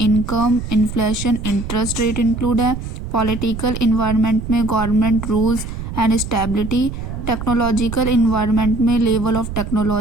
inflation, interest rate include है। पॉलिटिकल इन्वायरमेंट में government rules and stability. Technological environment में level of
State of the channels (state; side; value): noise; right; rumble, 7 dB below the sound